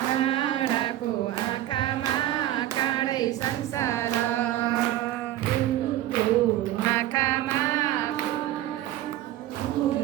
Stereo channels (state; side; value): quieter; left; 13.9 dB